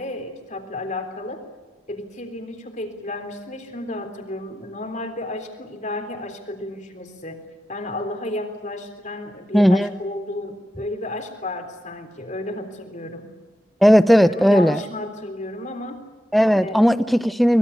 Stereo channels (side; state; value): both; normal; correlation 0.90